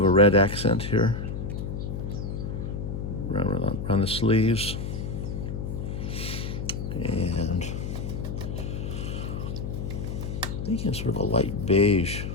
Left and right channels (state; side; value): noise; left; hum, 5 dB below the sound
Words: a red accent here around the sleeves, and thinking sort of a light beige.